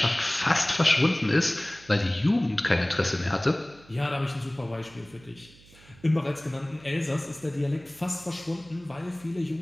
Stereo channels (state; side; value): noise; right; hum, 25 dB below the sound